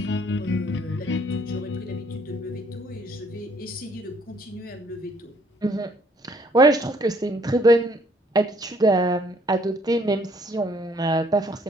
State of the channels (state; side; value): normal; both; correlation 0.63